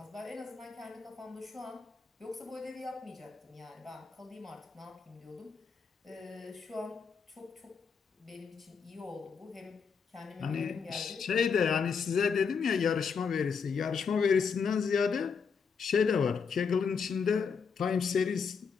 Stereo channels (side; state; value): right; quieter; 5.9 dB